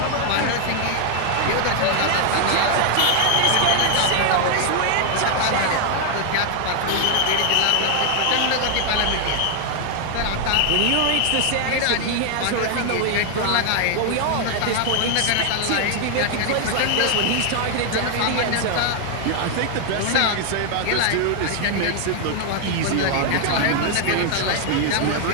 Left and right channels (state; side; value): different; both; correlation 0.00